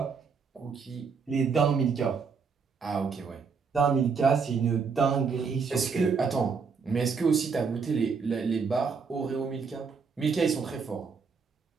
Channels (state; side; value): quieter; left; 5.5 dB